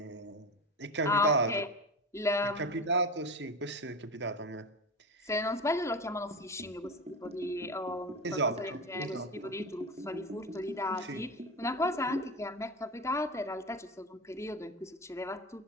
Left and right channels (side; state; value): both; normal; correlation 0.23